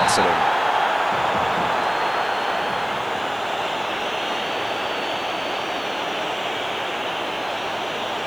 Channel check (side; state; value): left; noise; hiss, 25 dB below the sound